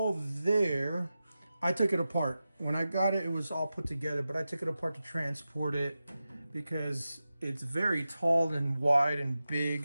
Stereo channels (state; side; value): inverted; both; correlation -0.93